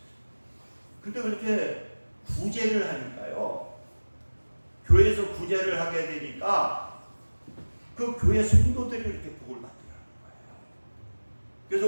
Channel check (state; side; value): inverted; both; correlation -1.00